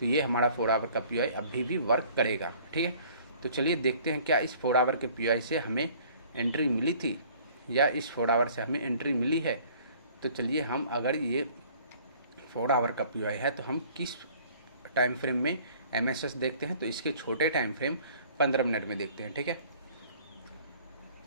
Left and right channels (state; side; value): inverted; both; correlation -0.54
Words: ये हमारा 4 आवर का पीआई अभी भी वर्क करेगा, ठीक है। तो चलिए देखते हैं क्या इस 4 आवर के पीआई से हमें एंट्री मिली थी या इस 4 आवर से हमें एंट्री मिली है। तो चलिए हम अगर ये 4 आवर का पीआई है तो हम किस टाइम फ्रेम में एमएसएस देखते हैं, तो इसके छोटे टाइम फ्रेम 15 मिनट में देखते हैं, ठीक है।